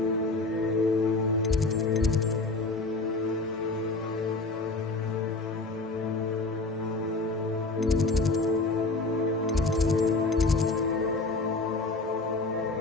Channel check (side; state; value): right; quieter; 3.4 dB